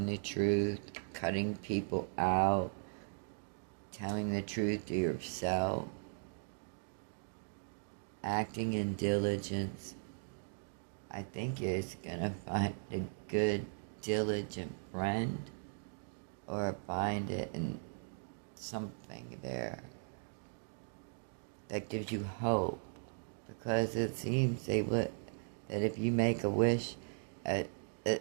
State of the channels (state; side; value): silent; left; digital silence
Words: the truth, cutting people out, telling the truth to yourself, acting in diligence. I think it's gonna find a good, diligent friend, or find it in something there that gives you hope, because it seems that if you make a wish,